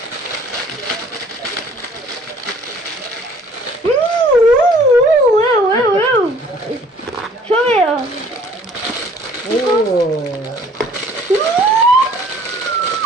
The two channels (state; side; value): normal; both; correlation 0.55